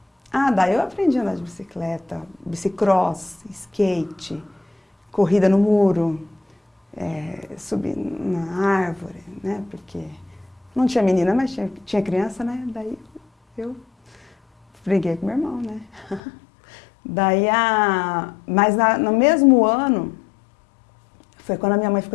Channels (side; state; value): right; drops out; at 16.2 s